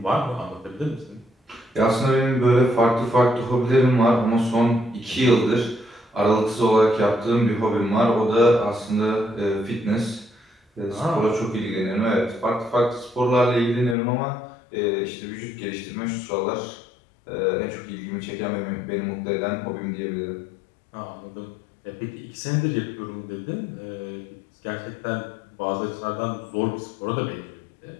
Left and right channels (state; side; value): drops out; right; at 14.0 s